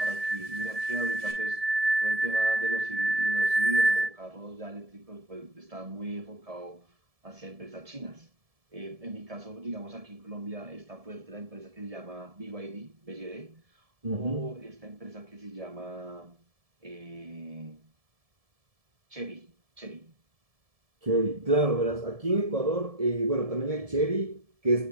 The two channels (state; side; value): late; left; 1.7 ms